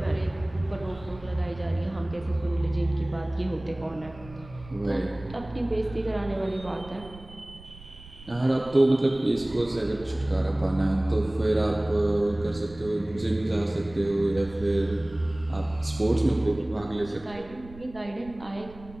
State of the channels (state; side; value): noise; right; rumble, 19 dB below the sound